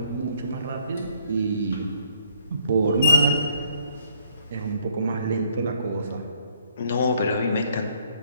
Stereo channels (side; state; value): both; inverted; correlation -0.65